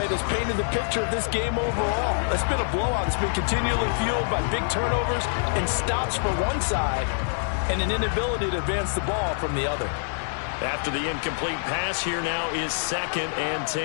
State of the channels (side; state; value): right; silent; digital silence